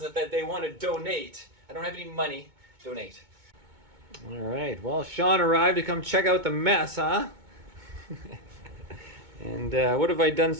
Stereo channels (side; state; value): left; late; 2.2 ms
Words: that they want to donate, I don't have any money, donate. All right, well, Sean arrived to come check out the mess, huh? And what have I done